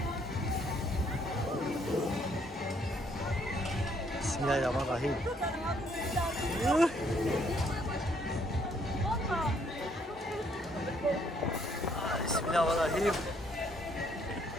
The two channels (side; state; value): both; normal; correlation 0.67